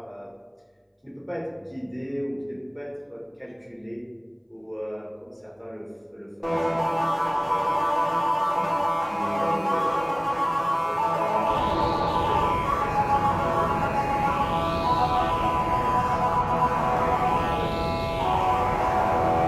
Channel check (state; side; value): identical; both; correlation 1.00